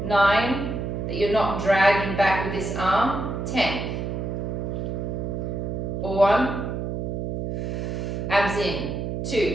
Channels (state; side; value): noise; right; hum, 3 dB below the sound